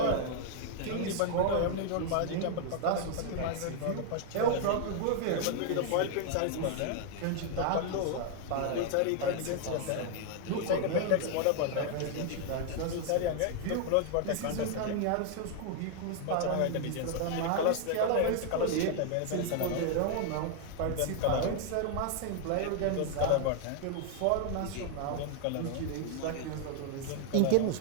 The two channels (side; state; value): both; different; correlation 0.00